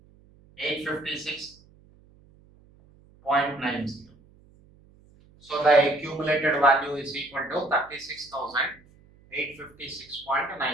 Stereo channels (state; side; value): noise; right; hum, 28 dB below the sound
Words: So the accumulated value is equal to